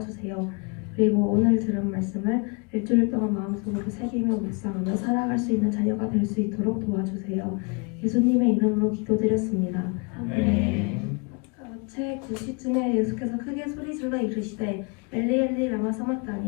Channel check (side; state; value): right; quieter; 32.8 dB